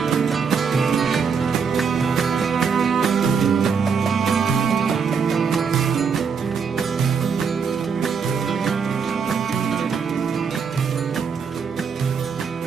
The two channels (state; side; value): quieter; left; 6.0 dB